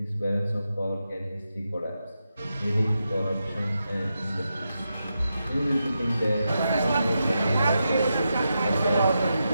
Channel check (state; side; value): inverted; both; correlation -0.87